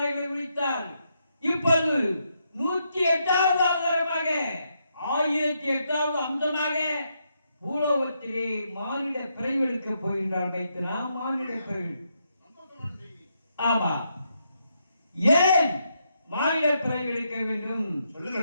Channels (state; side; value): inverted; both; correlation -0.79